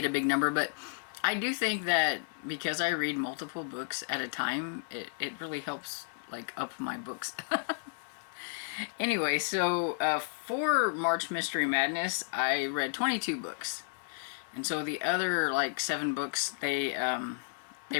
a big number. But I do think that because I read multiple books at a time, it really helps like up my books. Anyway, so for March Mystery Madness, I read 22 books. And so the other like 7 books, they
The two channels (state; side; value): silent; right; digital silence